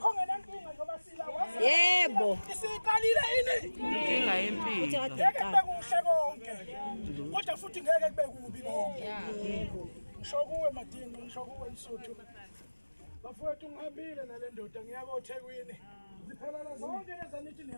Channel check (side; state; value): both; inverted; correlation -1.00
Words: ngenankinga njengoba sila wazi. Yebo. Isiqalile ini? Inkinga yempilo. Ngeke kube kuhle konke. Kodwa futhi ngeke kube kubi konke. Ngisho kuwe Madingo, ngisho kuwe Msuthu. Bafowethu ngihambile nale ndoda ngiyako eThekwini. Ziphelele zonke lezi nithi